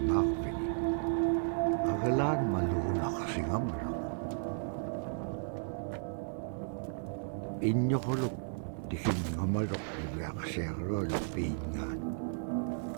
Agalaan maluunaqsingamalaq. Inñoquluk tikinngamaluq iveaksiaqaluallu piingaan.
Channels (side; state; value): left; silent; 55 dB below the other